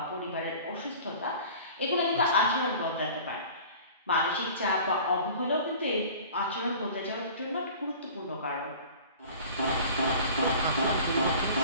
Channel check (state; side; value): inverted; both; correlation -0.43